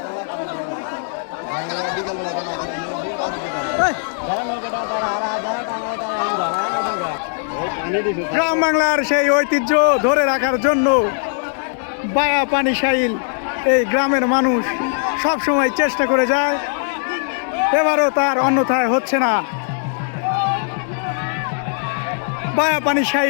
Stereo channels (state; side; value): silent; right; digital silence